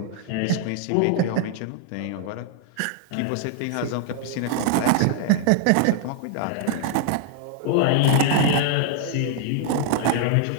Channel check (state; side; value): different; both; correlation 0.00